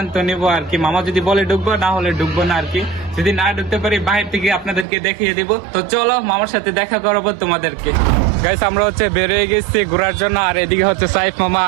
নেবো আর কি। মামা যদি বলে ঢুকবো, না হলে ঢুকবো না আর কি। যদি না ঢুকতে পারি বাইরে থেকে আপনাদেরকে দেখিয়ে দিব। তো চলো মামার সাথে দেখা করাবো তোমাদেরকে। গাইস, আমরা হচ্ছে বেরিয়ে গেছি ঘোরার জন্য। আর এদিকে হচ্ছে সাইফ মামা,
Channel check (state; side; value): drops out; left; at 4.9 s